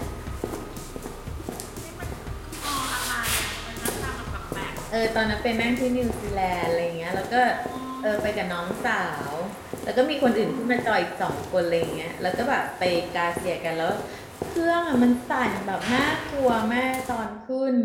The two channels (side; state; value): both; identical; correlation 1.00